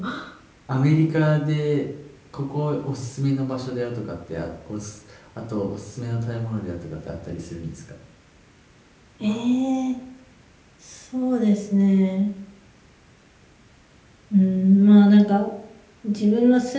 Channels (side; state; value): both; identical; correlation 1.00